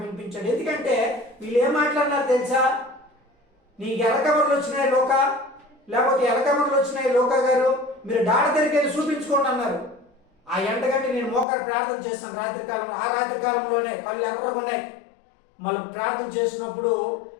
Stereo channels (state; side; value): drops out; right; at 11.5 s